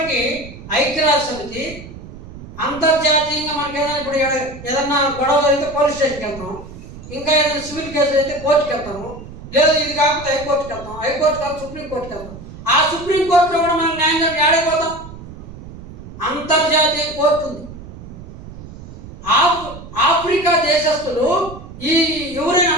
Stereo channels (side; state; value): right; noise; rumble, 15 dB below the sound